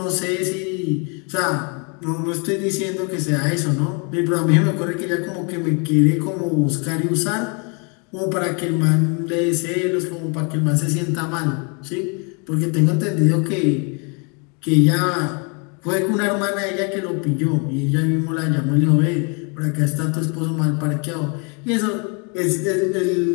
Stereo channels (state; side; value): quieter; right; 34.8 dB